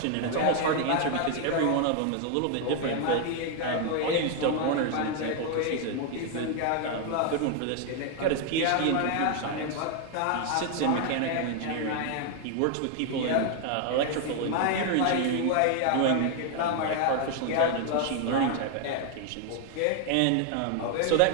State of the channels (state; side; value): different; both; correlation 0.00